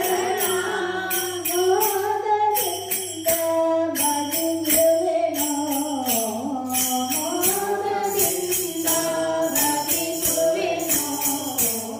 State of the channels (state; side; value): identical; both; correlation 1.00